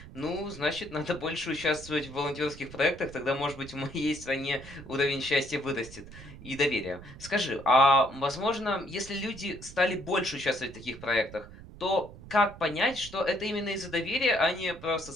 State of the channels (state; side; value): noise; right; rumble, 16 dB below the sound